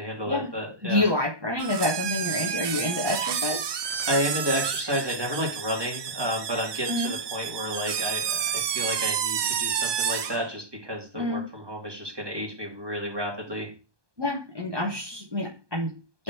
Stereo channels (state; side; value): late; left; 1.2 ms